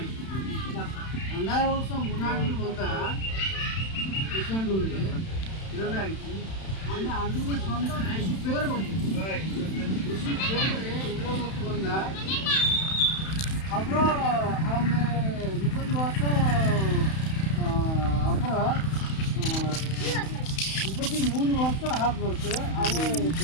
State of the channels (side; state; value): right; late; 31 ms